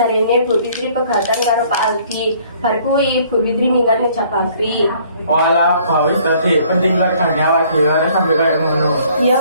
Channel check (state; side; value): inverted; both; correlation -0.59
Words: Bu Fitri pegatan karo Pak Aldi. Bar kuwi Bu Fitri minggat ning Jabagri. Walah, bawis tadi penting keluarganya awak dhewe ora sampe kaya ngono. Iya